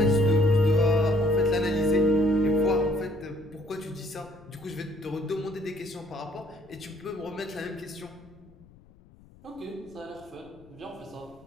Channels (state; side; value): noise; left; rumble, 25 dB below the sound